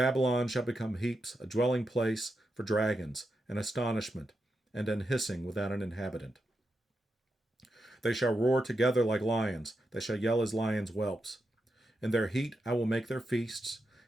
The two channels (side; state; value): both; normal; correlation 0.86